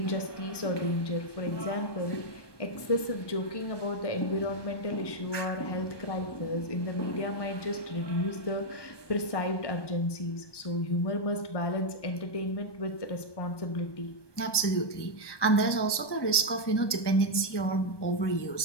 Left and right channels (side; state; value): right; late; 1.2 ms